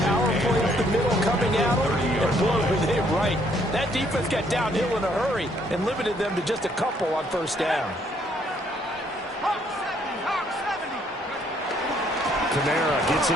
power play up the middle coming at them, and boy, were they right. That defense got downhill in a hurry and limited them to just a couple on 1st down. Kamara gets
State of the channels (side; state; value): both; normal; correlation 0.68